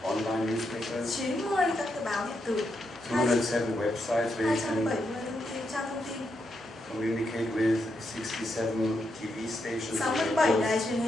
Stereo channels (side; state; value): both; normal; correlation 0.82